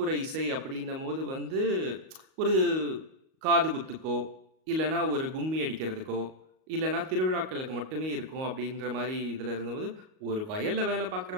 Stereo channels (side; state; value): left; late; 38 ms